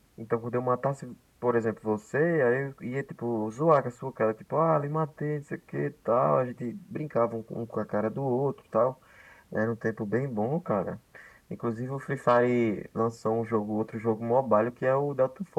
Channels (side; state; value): both; identical; correlation 1.00